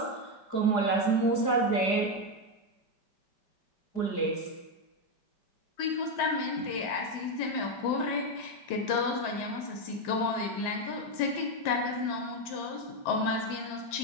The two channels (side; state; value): right; late; 5.2 ms